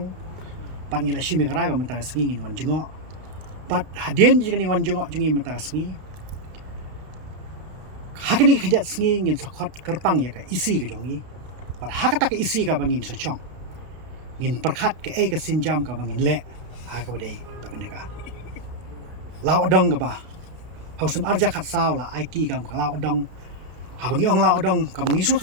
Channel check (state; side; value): late; left; 32 ms